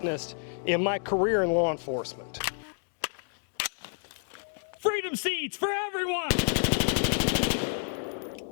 in my career in law enforcement. Freedom seats for everyone!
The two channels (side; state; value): right; silent; 56 dB below the other